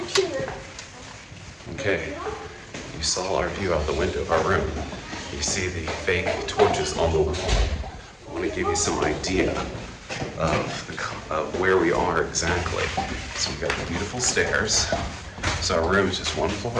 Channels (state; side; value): identical; both; correlation 1.00